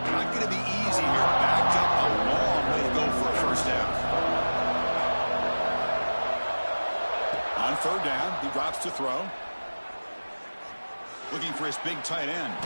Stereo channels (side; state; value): both; inverted; correlation -1.00